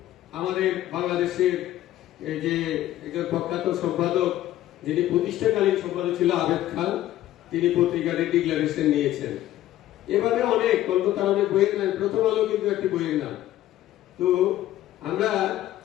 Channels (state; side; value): quieter; right; 13.8 dB